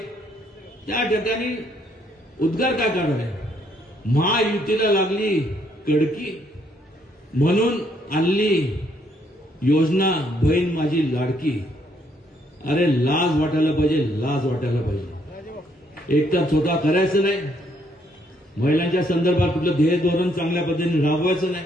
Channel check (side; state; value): both; normal; correlation 0.70